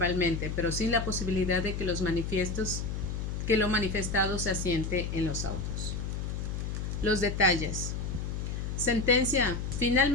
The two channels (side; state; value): left; noise; hum, 3 dB below the sound